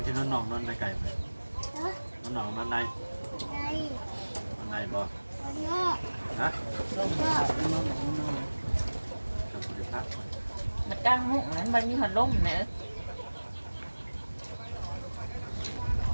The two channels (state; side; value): inverted; both; correlation -1.00